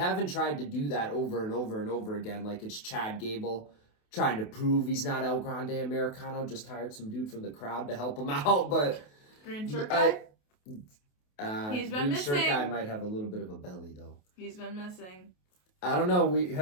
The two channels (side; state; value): right; late; 28 ms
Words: tried to do that over and over and over again. Like, it's Chad Gable trying to prove he's not El Grande Americano. Just hired some dude from the crowd to help him out, but... Green shirt guy? He's been missing. Green shirt guy might have a little bit of a belly, though. He's been missing. I don't know.